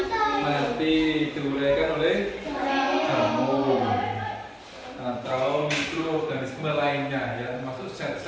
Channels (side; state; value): both; identical; correlation 1.00